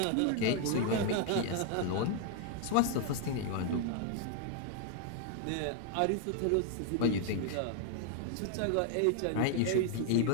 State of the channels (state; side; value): different; both; correlation 0.00